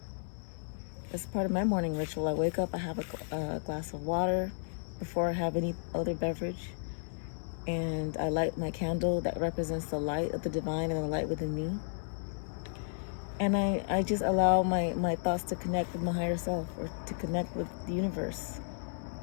As part of my morning ritual, I wake up, I have a glass of water before I have any other beverage, and I light my candle that represents the light of the divine and the light within me. And I just allow my thoughts to connect with my higher self, or to connect with the universe.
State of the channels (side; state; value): right; silent; 56 dB below the other